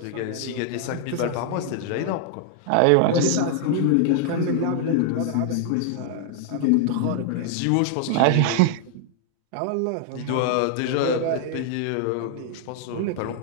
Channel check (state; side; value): different; both; correlation 0.00